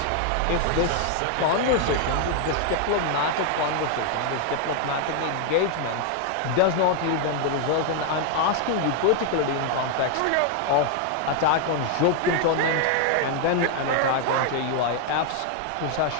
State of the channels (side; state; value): both; different; correlation 0.00